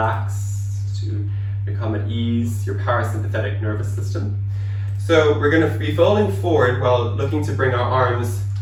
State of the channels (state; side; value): identical; both; correlation 1.00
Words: to become at ease, your parasympathetic nervous system. So we're going to be folding forward while looking to bring our arms